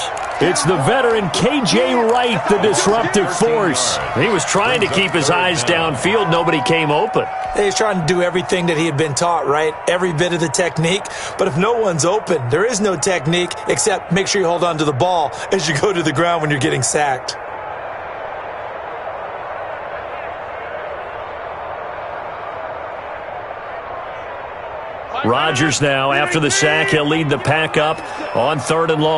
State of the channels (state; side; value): identical; both; correlation 1.00